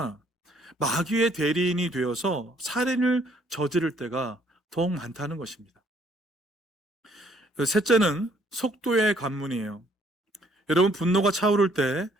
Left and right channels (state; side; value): normal; both; correlation 0.64